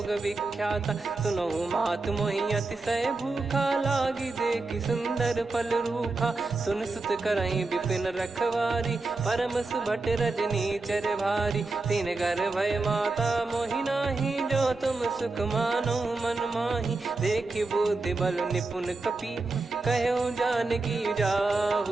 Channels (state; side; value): quieter; left; 3.5 dB